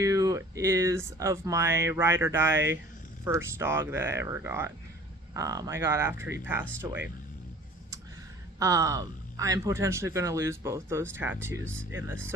is of my ride or die first dog that I ever got. I got after he passed away. I'm potentially going to lose both those tattoos in this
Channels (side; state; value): both; normal; correlation 0.48